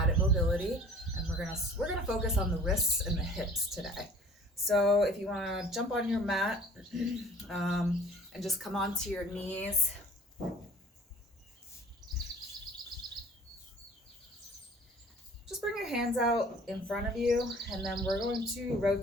mobility, and we're gonna focus on the wrists and the hips today. So if you want to jump on your mat and just come onto your knees. Just bring your hands out in front of you, and then we're going to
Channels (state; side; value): normal; both; correlation 0.49